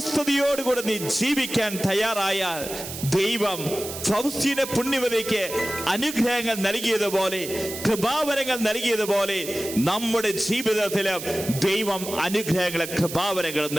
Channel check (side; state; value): right; noise; hiss, 9 dB below the sound